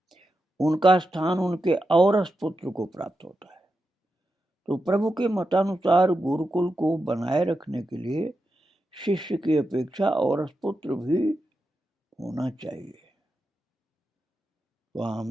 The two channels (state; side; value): normal; both; correlation 0.88